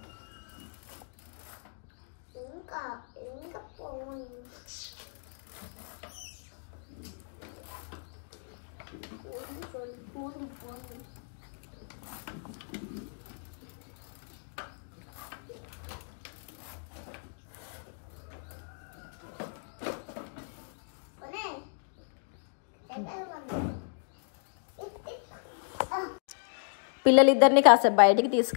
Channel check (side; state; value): right; silent; digital silence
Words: పిల్లలిద్దరిని కాసేపు బయటికి